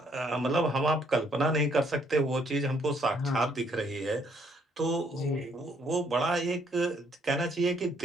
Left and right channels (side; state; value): both; normal; correlation 0.68